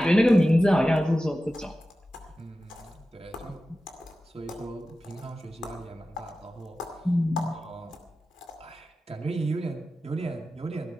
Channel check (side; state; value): both; normal; correlation 0.94